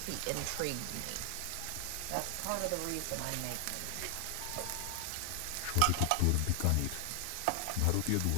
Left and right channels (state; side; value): different; both; correlation 0.00